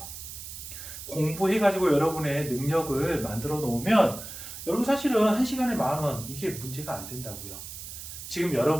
공부해가지고 여러분의 능력을 만들어 놓으면 여러분 사실은 1시간에 10,000원 이게 문제가 안 된다고요. 지금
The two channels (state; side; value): noise; right; hiss, 11 dB below the sound